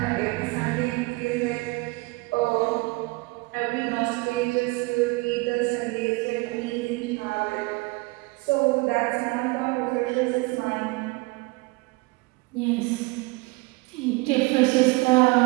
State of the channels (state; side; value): quieter; left; 25.1 dB